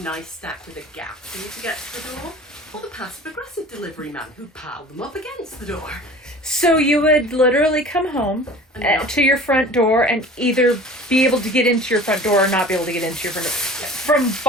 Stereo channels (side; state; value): both; normal; correlation 0.43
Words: stack with a gap for you to get to the door, or the passive-aggressive delivery man who piled them up against the door. So you would literally come home to your front door and either be able to get into your front door or not be able to get into your front door from